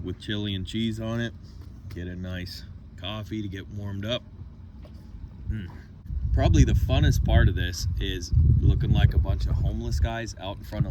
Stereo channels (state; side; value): identical; both; correlation 1.00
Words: with chili and cheese on it. Get a nice coffee to get warmed up. probably the funnest part of this is looking like a bunch of homeless guys out in front